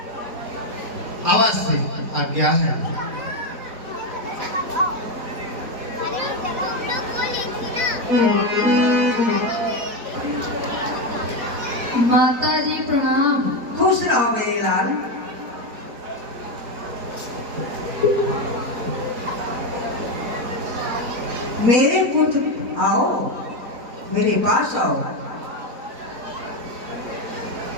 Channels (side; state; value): left; late; 4.4 ms